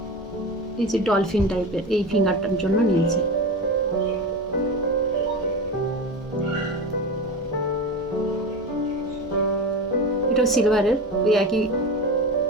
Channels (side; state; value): both; normal; correlation 0.26